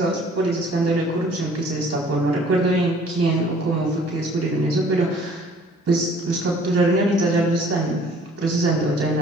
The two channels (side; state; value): both; normal; correlation 0.55